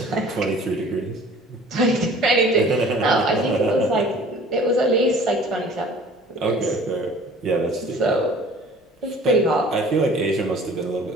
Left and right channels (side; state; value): both; normal; correlation 0.48